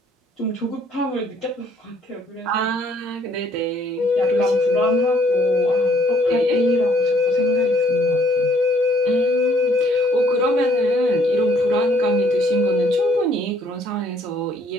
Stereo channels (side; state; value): both; normal; correlation 0.64